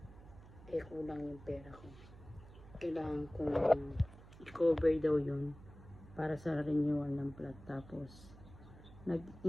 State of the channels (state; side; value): noise; right; hum, 18 dB below the sound